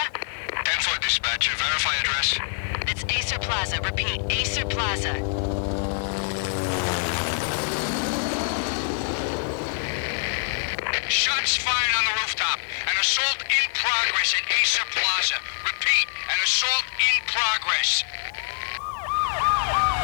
10-4 dispatcher, verify address. It's Acer Plaza. Repeat, Acer Plaza. Shots fired on the rooftop. An assault in progress at Acer Plaza. Repeat, an assault in progress.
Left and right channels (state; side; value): silent; right; 62 dB below the other